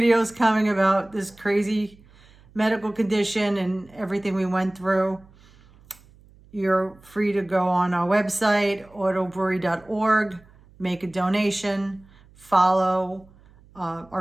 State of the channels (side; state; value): right; noise; hum, 27 dB below the sound